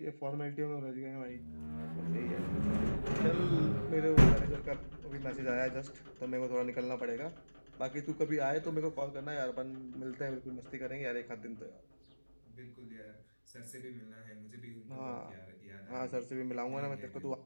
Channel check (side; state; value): both; inverted; correlation -1.00